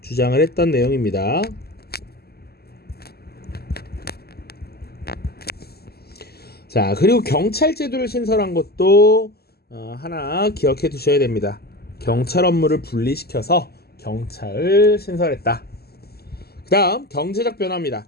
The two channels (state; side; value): late; right; 0.46 ms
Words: 주장을 했던 내용입니다. 자, 그리고 경찰 제도를 신설한 것도 하나 기억해 두셔야 됩니다. 경찰 업무를 분리시켜서 경찰을 신설했다. 그 다음 경제적 변화입니다.